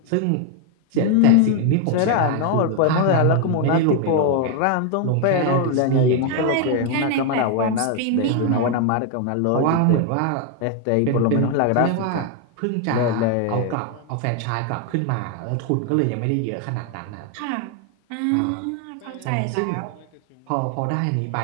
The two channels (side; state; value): both; different; correlation 0.01